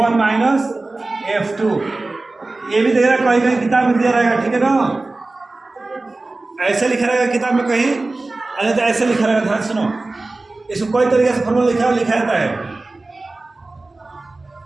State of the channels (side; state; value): left; quieter; 3.2 dB